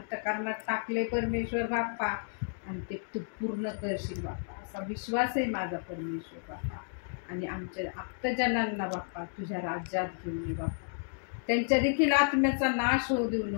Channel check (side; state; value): right; silent; digital silence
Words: टाकले परमेश्वर बाप्पा, आणि ते तू पूर्ण करशील बाप्पा, असा विश्वास आहे माझा परमेश्वर बाप्पा. आणि आमच्या आप्तजनांना बाप्पा तुझ्या राज्यात घेऊन ये बाप्पा. त्यांच्या देखील आत्म्याचा नाश होऊ देऊ